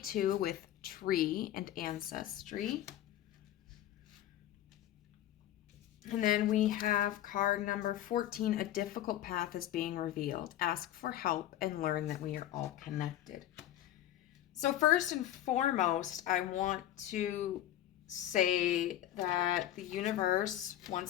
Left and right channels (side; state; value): right; quieter; 12.8 dB